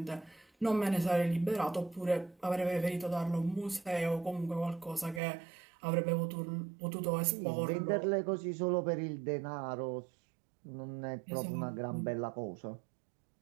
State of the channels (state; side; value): drops out; left; at 5.2 s